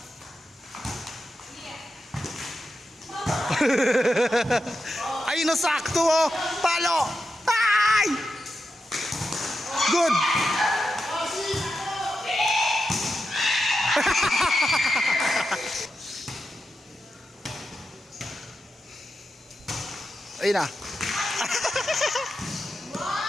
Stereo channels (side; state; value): both; normal; correlation 0.88